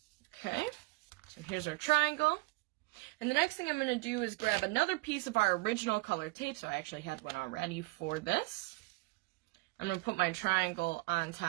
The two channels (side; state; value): left; quieter; 24.0 dB